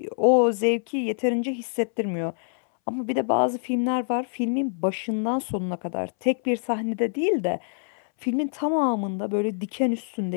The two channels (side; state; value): right; silent; 61 dB below the other